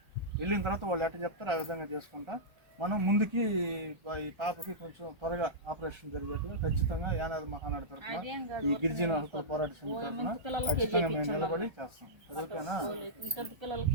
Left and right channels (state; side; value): late; left; 1.3 ms